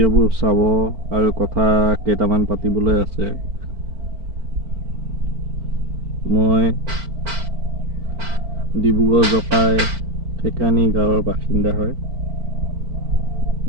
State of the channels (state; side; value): late; left; 4.5 ms